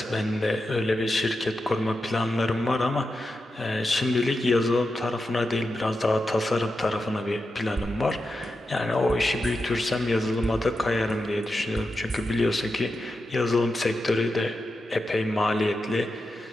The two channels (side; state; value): both; normal; correlation 0.89